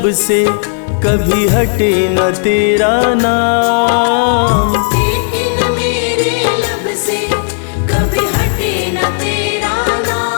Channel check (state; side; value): silent; right; digital silence